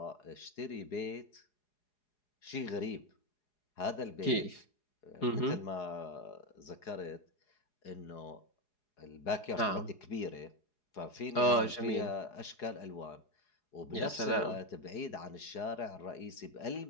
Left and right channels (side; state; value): right; late; 4.8 ms